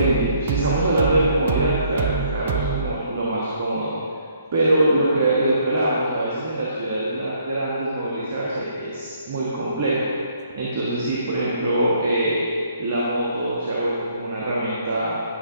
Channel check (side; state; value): both; inverted; correlation -0.65